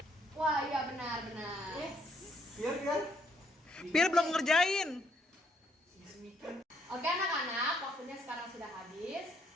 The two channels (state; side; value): normal; both; correlation 0.70